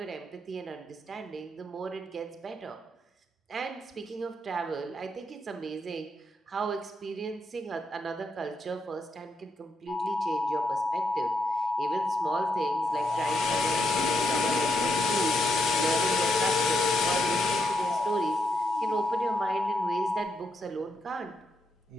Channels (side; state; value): both; normal; correlation 0.79